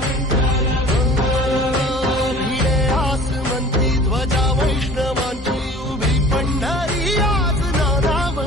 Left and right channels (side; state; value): both; normal; correlation 0.45